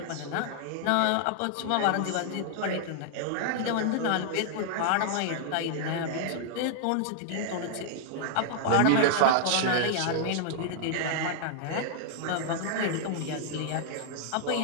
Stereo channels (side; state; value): both; different; correlation -0.01